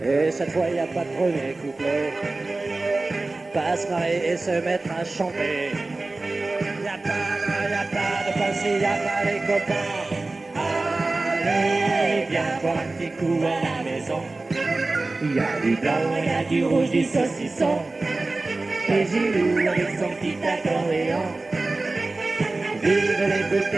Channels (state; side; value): quieter; left; 3.2 dB